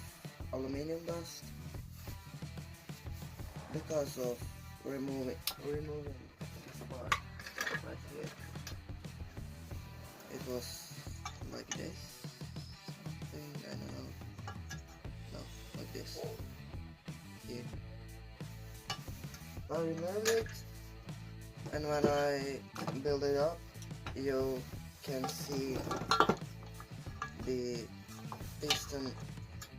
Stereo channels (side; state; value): both; identical; correlation 1.00